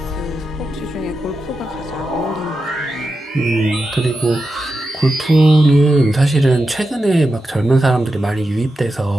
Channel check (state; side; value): normal; both; correlation 0.89